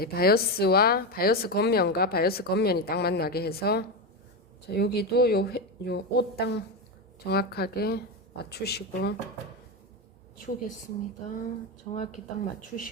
바이어스 겉면과 바이어스 겉면이 딱 만나게 해서 자, 여기도 요 옷 딱 정확하게 맞추시고 치우겠습니다. 정확히 딱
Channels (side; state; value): both; normal; correlation 0.13